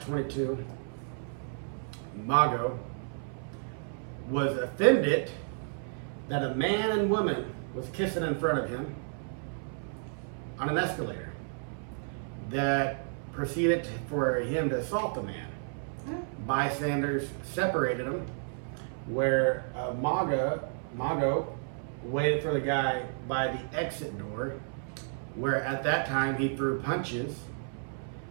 22, Mago was offended that a man and woman was kissing in front of him on an escalator that proceeded for him to assault the man. Bystanders separated him, where Mago waited for the guy by the exit door, where at that time he threw punches,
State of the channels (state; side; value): silent; left; 57 dB below the other